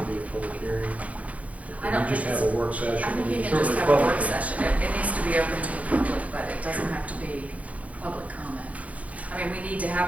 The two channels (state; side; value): late; left; 0.068 ms